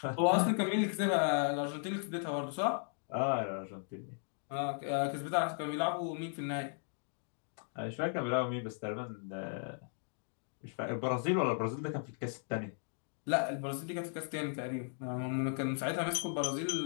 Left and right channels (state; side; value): silent; right; 54 dB below the other